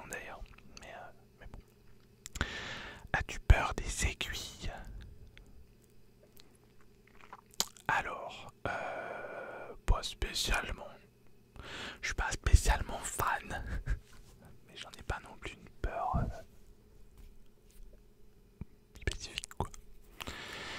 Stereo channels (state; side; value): identical; both; correlation 1.00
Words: d'ailleurs. Mais bon. As-tu peur des aiguilles? Alors, pas spécialement. Je suis pas spécialement fan. Mais j'en ai pas non plus une peur spécifique quoi.